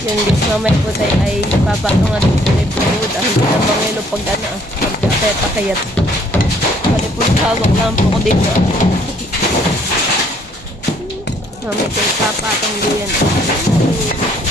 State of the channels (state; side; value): normal; both; correlation 0.63